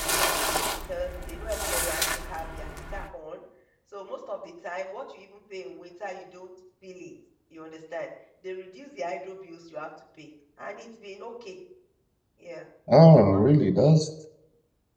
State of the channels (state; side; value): identical; both; correlation 1.00